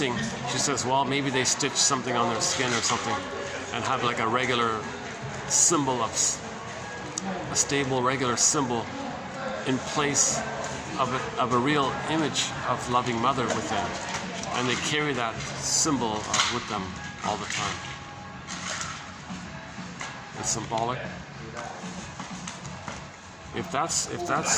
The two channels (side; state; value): both; identical; correlation 1.00